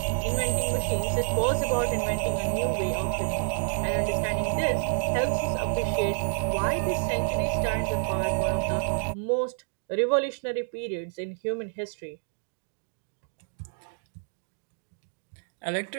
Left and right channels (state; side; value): silent; left; 59 dB below the other